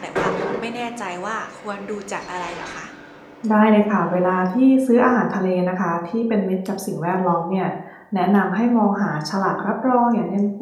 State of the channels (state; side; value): identical; both; correlation 1.00